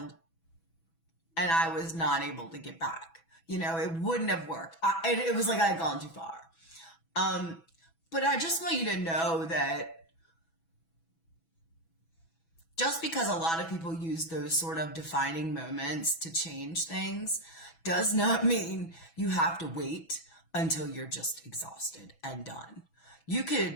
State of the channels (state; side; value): late; right; 6.1 ms